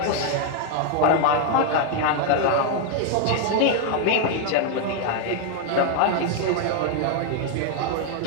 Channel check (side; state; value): both; different; correlation 0.01